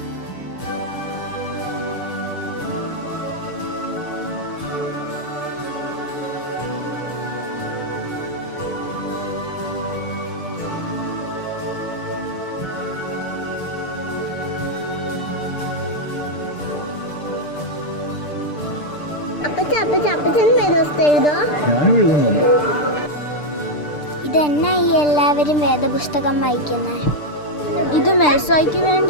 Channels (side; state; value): right; late; 6.7 ms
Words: ഇതെന്നാ ഈ എല്ലാവരും വേദപുസ്തകം വായിക്കുന്നത്? ഇത് മെൽസോയ്ക്ക്